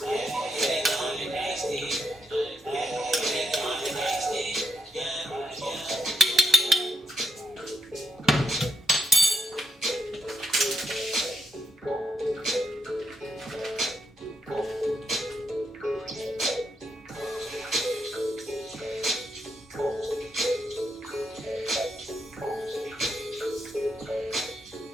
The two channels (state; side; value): normal; both; correlation 0.80